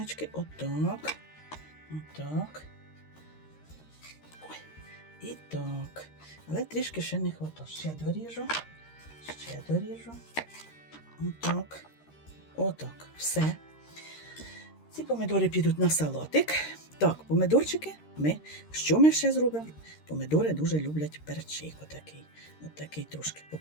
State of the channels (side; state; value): right; late; 13 ms